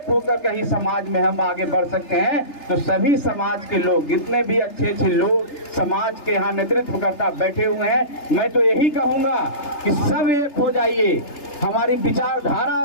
होकर कहीं समाज में हम आगे बढ़ सकते हैं। तो सभी समाज के लोग, जितने भी अच्छे अच्छे लोग समाज के यहाँ नेतृत्व करता बैठे हुए हैं, मैं तो यही कहूँगा कि सब एक हो जाइए। हमारी विचारधारा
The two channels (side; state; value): right; late; 3.3 ms